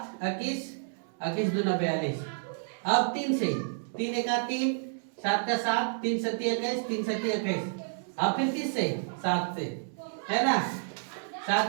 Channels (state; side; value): silent; left; digital silence